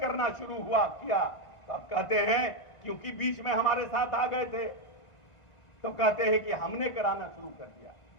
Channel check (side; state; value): right; late; 1.5 ms